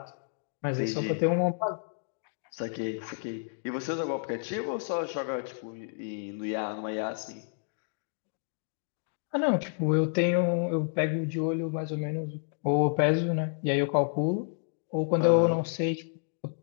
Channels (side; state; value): right; silent; digital silence